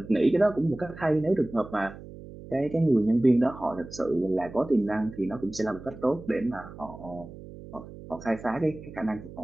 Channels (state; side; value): noise; right; hum, 15 dB below the sound